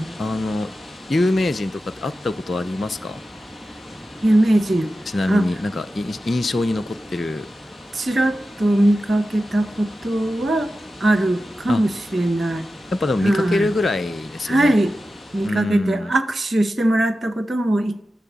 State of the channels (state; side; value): normal; both; correlation 0.93